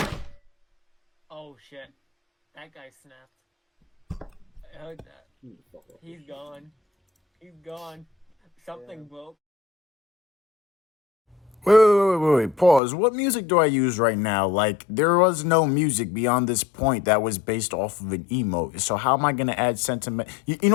Oh shit. That guy snapped. I heard that. He's gone. He's gone. Something broke. Wait, pause. What music do I use right now? Like, there was no music beyond this point that was based off of an emote. So how am I going to add sentiment? You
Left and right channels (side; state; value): right; drops out; at 12.8 s